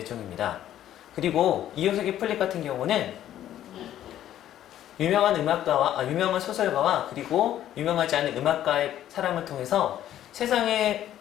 그리고 이효석의 풀립 같은 경우는 유명한 소설가와 그리고 유명하지 않은 음악가의 사람을 통해서 세상의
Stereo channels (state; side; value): quieter; right; 11.9 dB